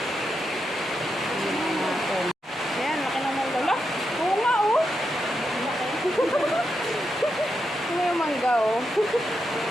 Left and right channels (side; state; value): both; normal; correlation 0.85